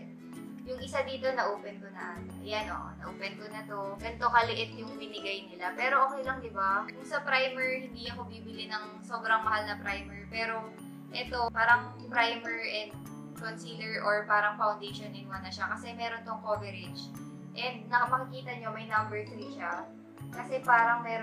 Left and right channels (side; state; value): both; identical; correlation 1.00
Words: Yung isa dito, na-open ko na. Ayan o, na-open ko na to. Ganito kaliit yung binigay nila. Pero okay lang, di ba? Kung sa primer, hindi ako bibili ng sobrang mahal na primer. Pero ito, parang primer and concealer or parang foundation in one na siya. Kasi meron tong coverage. And makikita nyo, may number 3 siya. Kasi parang